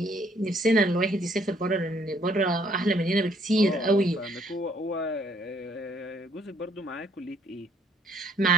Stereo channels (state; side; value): normal; both; correlation 0.65